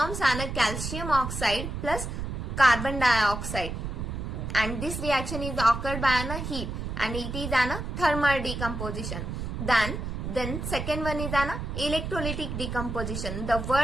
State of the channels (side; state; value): right; noise; rumble, 5 dB below the sound